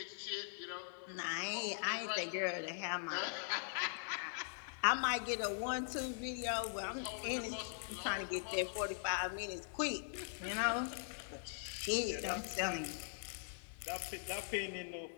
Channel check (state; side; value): silent; right; 50 dB below the other